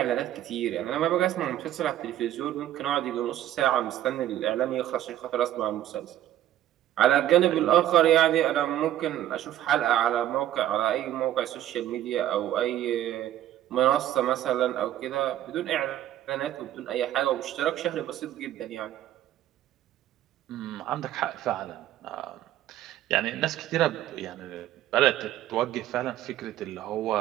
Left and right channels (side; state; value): left; quieter; 12.6 dB